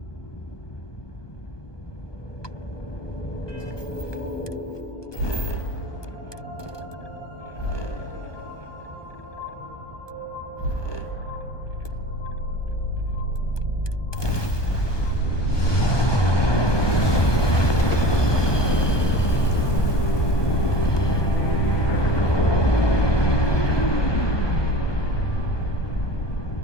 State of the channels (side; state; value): right; late; 1.2 ms